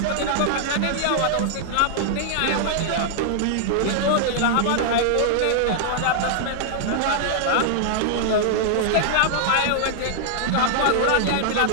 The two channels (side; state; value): both; different; correlation -0.01